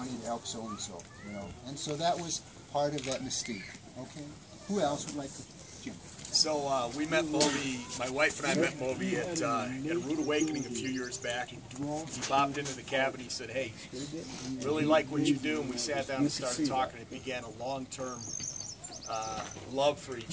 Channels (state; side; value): identical; both; correlation 1.00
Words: to help so-and-so, you know." And so that was part of that mystique. Okay. Who else would like to? Jim. So we met Moby, my wife and I met Moby at Rude Awakening a few years back. He popped into the cabin, he said, "Hey, really like what you do," and we sat down and started talking. It began a long-term love for